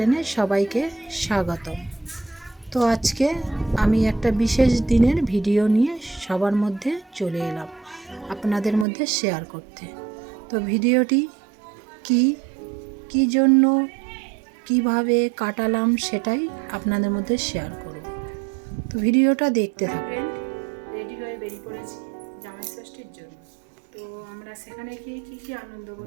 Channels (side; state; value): left; drops out; at 8.8 s